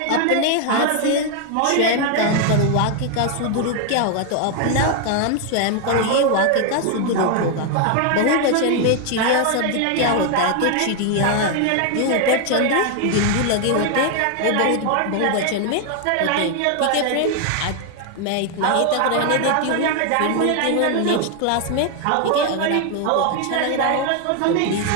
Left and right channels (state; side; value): different; both; correlation 0.00